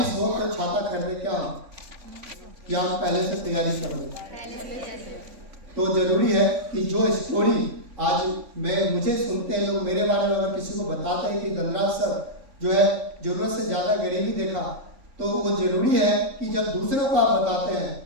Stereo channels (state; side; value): late; left; 3.5 ms